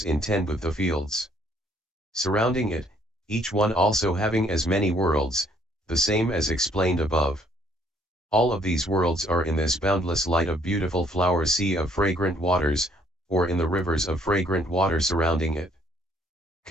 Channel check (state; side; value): normal; both; correlation 0.64